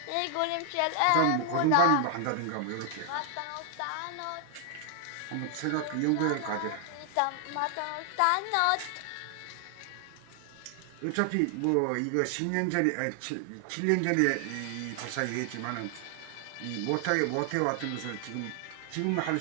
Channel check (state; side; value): different; both; correlation 0.00